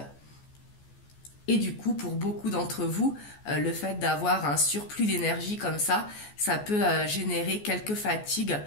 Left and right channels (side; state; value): right; late; 14 ms